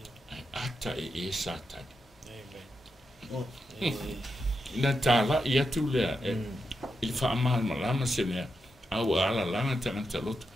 ata e satani na tala ia tu lea il fa amal malama sene au ala lana tangata lotu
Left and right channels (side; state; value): both; normal; correlation 0.86